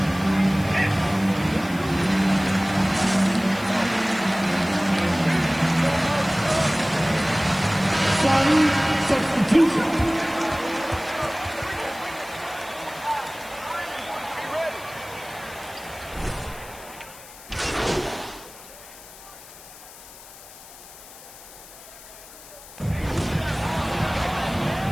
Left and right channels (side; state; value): left; noise; hiss, 18 dB below the sound